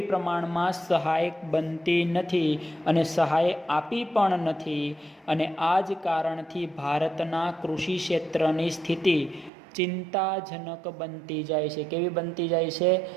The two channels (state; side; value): drops out; left; at 9.5 s